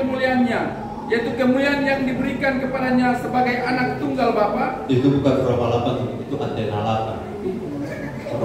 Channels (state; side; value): identical; both; correlation 1.00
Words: yaitu kemuliaan yang diberikan kepadanya sebagai anak tunggal Bapa. Itu bukan Roma 8, itu Antena 8.